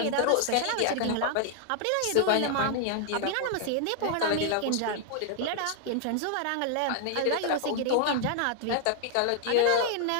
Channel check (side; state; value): both; different; correlation 0.00